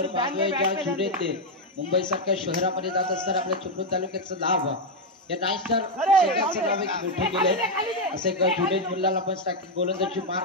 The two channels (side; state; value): both; normal; correlation 0.02